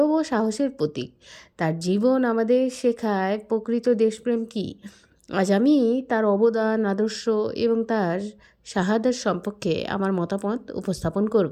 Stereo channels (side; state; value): both; identical; correlation 1.00